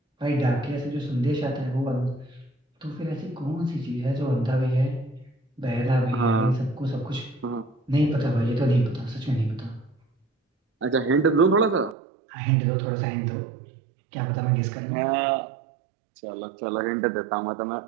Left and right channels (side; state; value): left; drops out; at 12.0 s